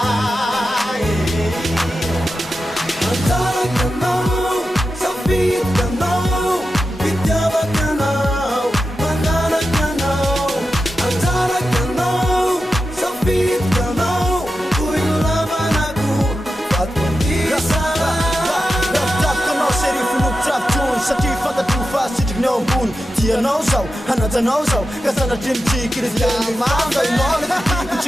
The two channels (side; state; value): both; normal; correlation 0.91